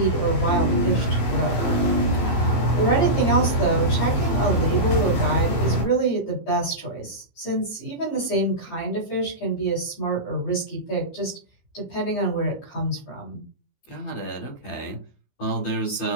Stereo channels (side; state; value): right; late; 15 ms